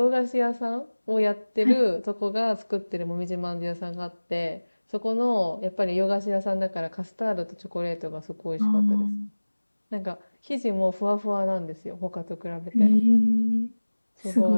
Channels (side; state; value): both; inverted; correlation -1.00